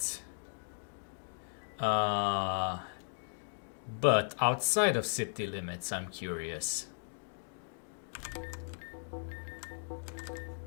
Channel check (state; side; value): silent; right; digital silence